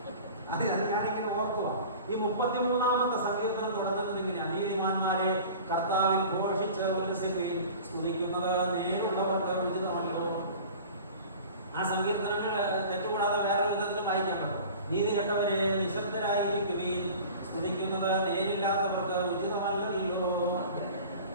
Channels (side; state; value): both; inverted; correlation -0.40